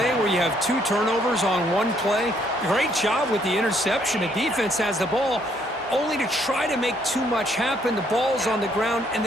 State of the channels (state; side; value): normal; both; correlation 0.68